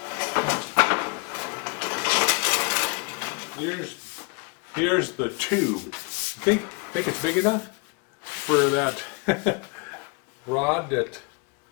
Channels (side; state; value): right; quieter; 32.1 dB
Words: Here's the tube. Think it's big enough for that rod that.